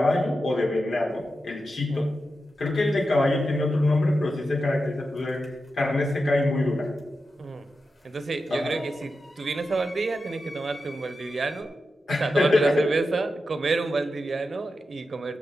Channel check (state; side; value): normal; both; correlation 0.90